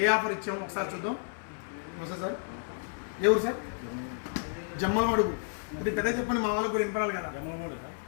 ఏ ఆఫర్ ఇచ్చామో ఒకసారి చూద్దాం. వస్తా సార్, ఎవరు సార్? జమ్మలమడుగు. ఇది పెద్ద చెప్పండి, మా వాళ్ళకు కూడా వినపడాలి కదా.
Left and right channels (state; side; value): silent; right; 57 dB below the other